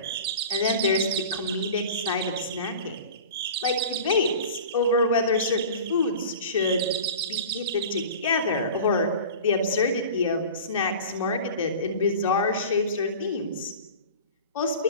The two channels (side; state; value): both; inverted; correlation -0.37